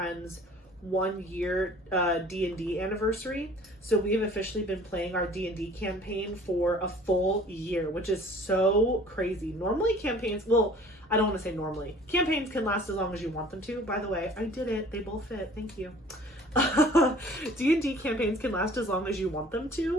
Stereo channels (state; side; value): normal; both; correlation 0.50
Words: 1 year D&D anniversary. So we have officially been playing our D&D campaign for a full year, which is so crazy. Normally campaigns, well, I don't want to say normally. Campaigns can last as long as you want them to. By the way, I did it. They both fit. Thank you. D&D campaigns can last as long as you want them